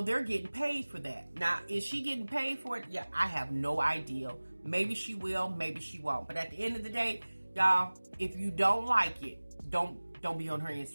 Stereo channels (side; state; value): both; inverted; correlation -1.00